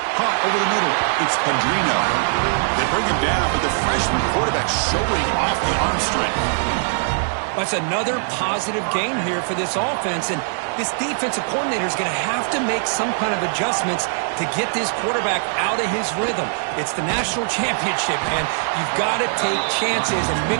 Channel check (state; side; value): silent; left; digital silence